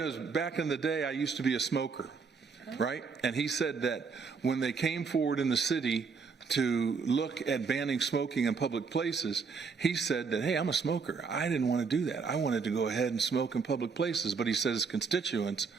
back in the day, I used to be a smoker, right? And he said that when they came forward in the city to look at banning smoking in public places, he said that, hey, I'm a smoker. I didn't want to do that. I wanted to go ahead and smoke in public places. But he said his constituents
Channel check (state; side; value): quieter; left; 5.2 dB